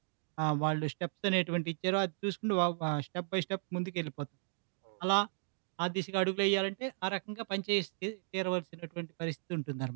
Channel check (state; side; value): silent; left; digital silence